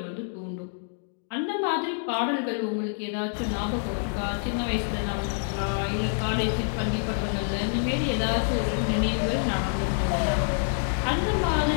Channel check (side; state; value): right; silent; digital silence